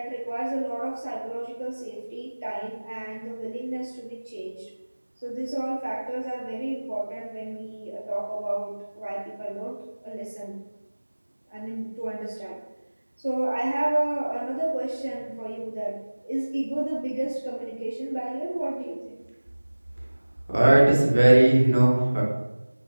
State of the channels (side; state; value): both; inverted; correlation -1.00